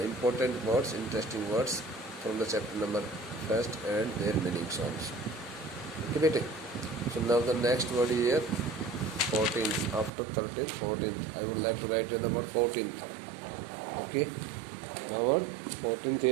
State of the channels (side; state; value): left; drops out; at 10.1 s